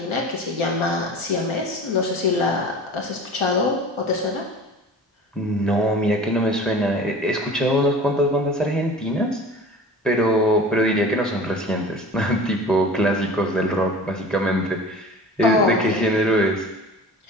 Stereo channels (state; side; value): normal; both; correlation 0.40